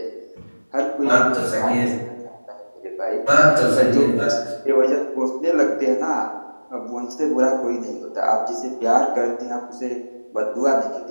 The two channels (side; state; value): both; inverted; correlation -1.00